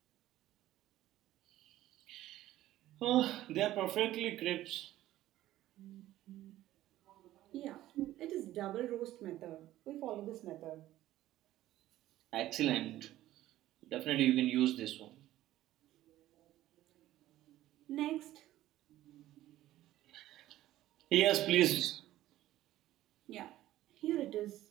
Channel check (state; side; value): quieter; left; 14.6 dB